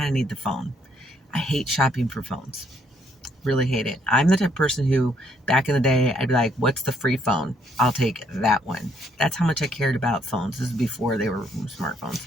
of need the phone. I hate shopping for phones. Really hate it. I'm the type of person who, back in the day, I'd be like, what's the free phone? I'll take that one. That's how much I cared about phones. This is before they were smartphones.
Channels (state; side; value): normal; both; correlation 0.69